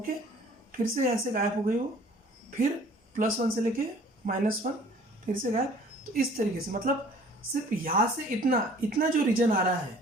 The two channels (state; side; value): normal; both; correlation 0.52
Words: फिर से यहाँ से गायब हो गई हो, फिर +1 से लेके -1, फिर से गायब। तो इस तरीके से मतलब सिर्फ यहाँ से इतना जो रीजन आ रहा है,